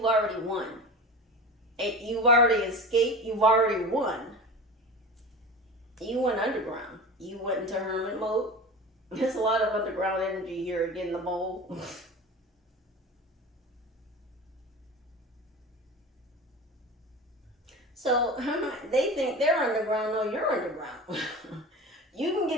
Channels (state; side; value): normal; both; correlation 0.32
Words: already won. You've already escaped. You've already won. You went underground. You went into hermit mode. There's a lot of underground energy here again, the mole. So they think they're underground. No, you're underground. You can